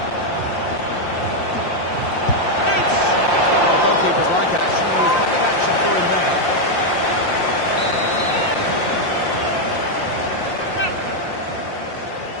Goalkeepers like action. There was plenty of action for him there.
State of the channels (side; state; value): right; late; 5.7 ms